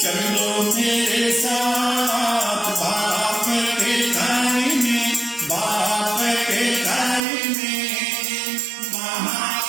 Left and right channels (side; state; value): left; drops out; at 7.2 s